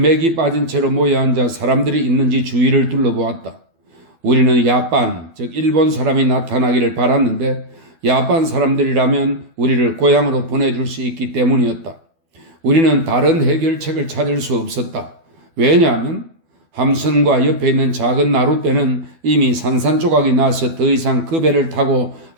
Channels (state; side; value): late; left; 12 ms